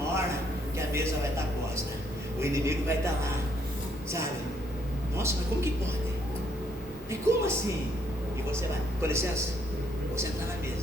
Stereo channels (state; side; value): normal; both; correlation 0.70